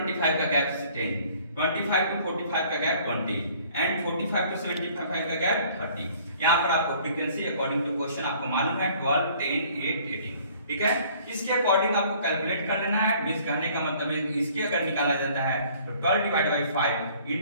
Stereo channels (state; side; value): inverted; both; correlation -0.56